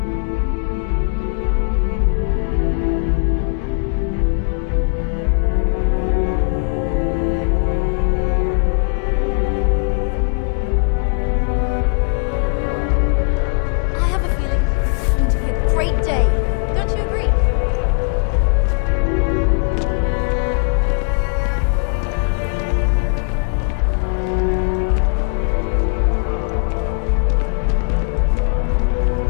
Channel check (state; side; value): quieter; right; 40.0 dB